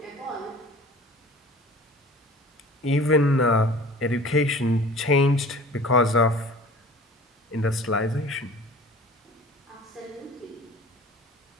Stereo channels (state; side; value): normal; both; correlation 0.44